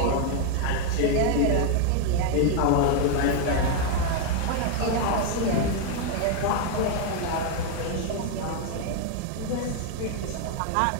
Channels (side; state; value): both; different; correlation 0.01